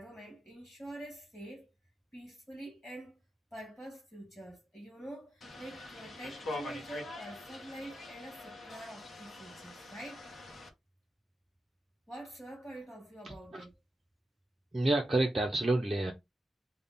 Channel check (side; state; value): both; normal; correlation 0.89